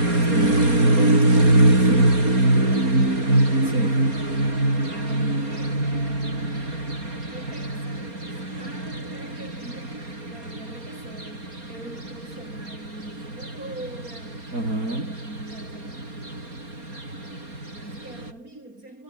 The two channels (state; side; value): late; left; 4.3 ms